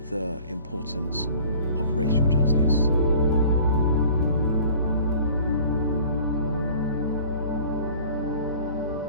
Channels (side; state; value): both; inverted; correlation -0.47